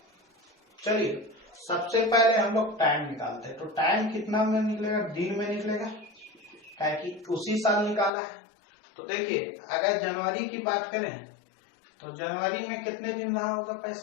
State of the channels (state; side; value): drops out; right; at 8.1 s